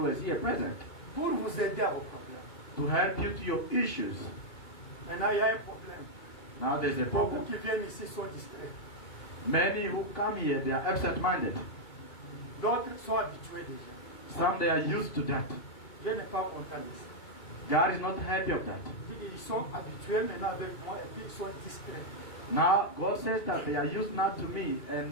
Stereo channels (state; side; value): late; right; 2.9 ms